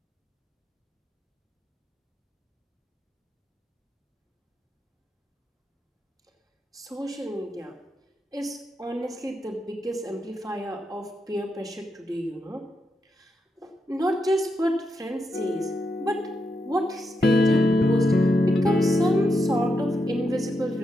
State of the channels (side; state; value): both; normal; correlation 0.84